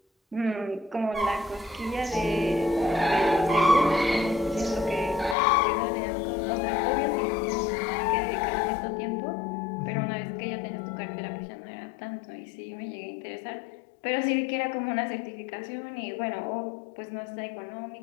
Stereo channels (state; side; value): drops out; right; at 5.4 s